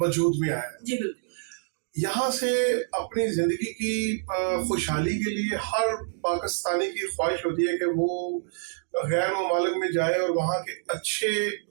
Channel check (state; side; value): silent; left; 60 dB below the other